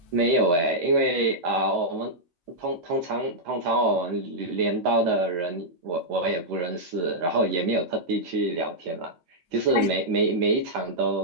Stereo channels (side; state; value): left; late; 12 ms